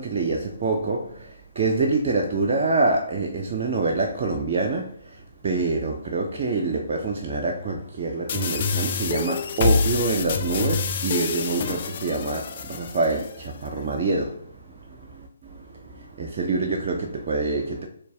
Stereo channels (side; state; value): both; inverted; correlation -0.54